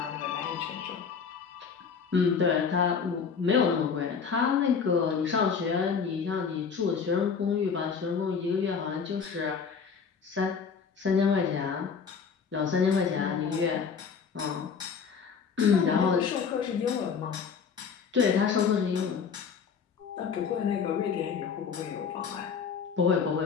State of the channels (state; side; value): quieter; right; 6.1 dB